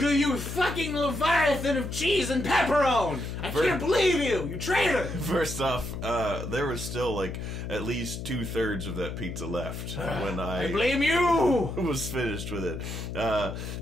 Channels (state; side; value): noise; left; hum, 6 dB below the sound